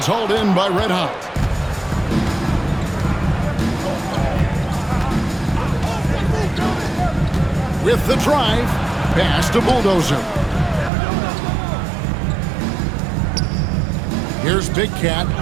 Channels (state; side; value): drops out; left; at 10.9 s